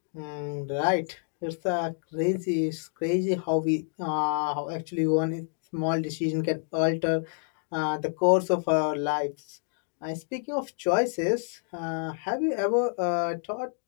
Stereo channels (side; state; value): right; silent; digital silence